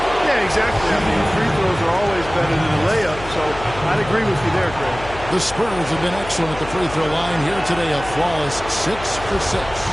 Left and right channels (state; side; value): noise; left; hum, 13 dB below the sound